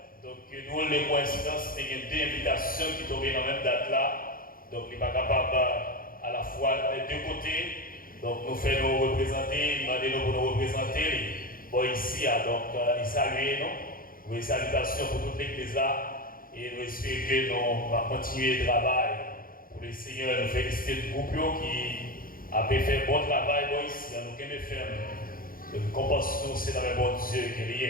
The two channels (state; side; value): late; right; 0.41 ms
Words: Donc nous les coïncidences, il y a deux invitations qui tombent dans la même date là. Donc il n'est pas capable à la fois des deux côtés. Donc nous faisons nous représenter, demandez-nous pour nous représenter. Bon ici, donc les saluer nous. Oui, salutations pour toute l'église là et nous espérons que nous allons continuer le travail pour le Seigneur. Nous féliciter le groupe qui a fait un bon travail ici, nous allons faire compassion, c'est dans le bon Dieu qui